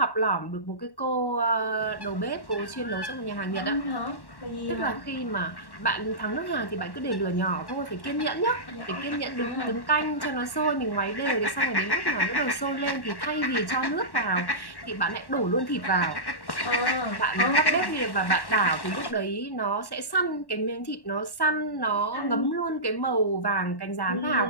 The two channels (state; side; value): late; right; 1.1 ms